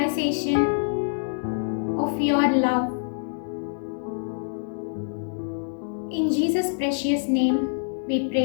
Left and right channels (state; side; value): silent; right; digital silence